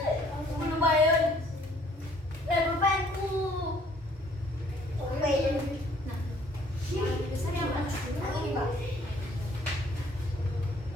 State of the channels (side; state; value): both; normal; correlation 0.60